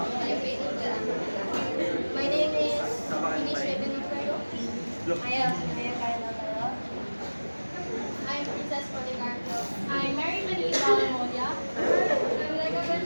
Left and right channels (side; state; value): both; inverted; correlation -1.00